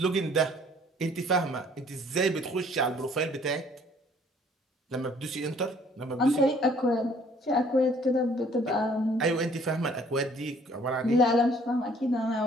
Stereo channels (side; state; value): both; normal; correlation 0.58